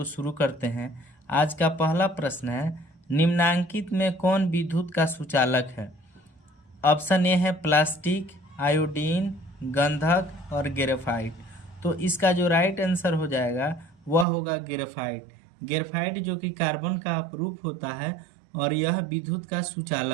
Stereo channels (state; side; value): drops out; left; at 14.2 s